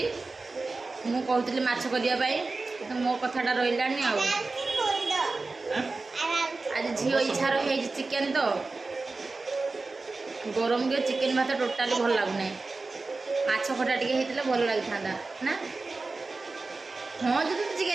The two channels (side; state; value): left; quieter; 3.7 dB